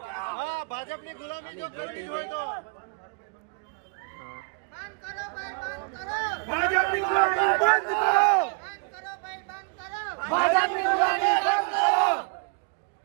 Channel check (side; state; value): left; quieter; 36.6 dB